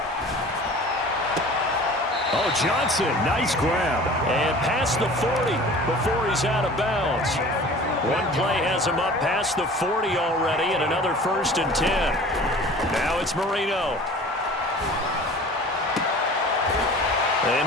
Oh, Johnson, nice grab. And past the 40 before he's out of bounds. One play has him up past the 40 already, and another 1st and 10. Now it's Marino.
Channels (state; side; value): normal; both; correlation 0.43